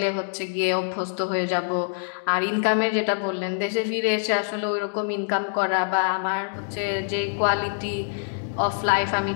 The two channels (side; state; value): right; silent; digital silence